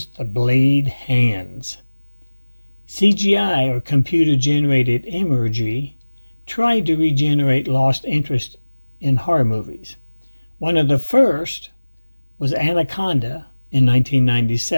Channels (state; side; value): inverted; both; correlation -1.00